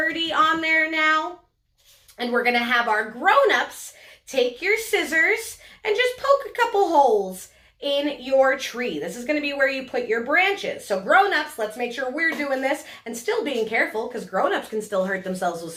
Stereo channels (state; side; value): identical; both; correlation 1.00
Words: on there now. And we're going to have our grown-ups take your scissors and just poke a couple holes in your tree. This is going to be where you put your branches. So grown-ups, let's make sure we're doing this and still being careful because grown-ups can still hurt themselves with